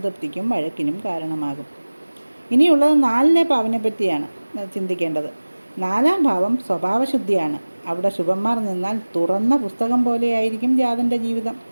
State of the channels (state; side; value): inverted; both; correlation -1.00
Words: വഴക്കിനും കാരണമാകും. ഇനിയുള്ളത് 4-ലെ പാവനെ പറ്റിയാണ് ചിന്തിക്കേണ്ടത്. 4-ാം ഭാവം സ്വഭാവശുദ്ധിയാണ്. അവിടെ ശുഭന്മാർ നിന്നാൽ തുറന്ന പുസ്തകം പോലെയായിരിക്കും ജാതൻ്റെ ജീവിതം.